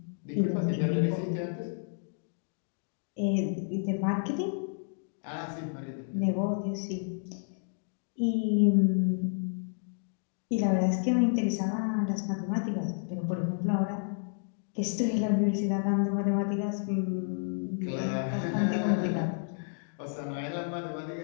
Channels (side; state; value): right; silent; digital silence